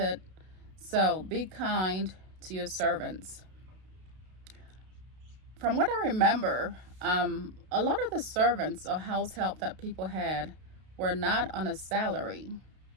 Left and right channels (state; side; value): late; left; 32 ms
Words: So be kind to your servants. From what I remember, a lot of the servants or house help that people had were not on a salary.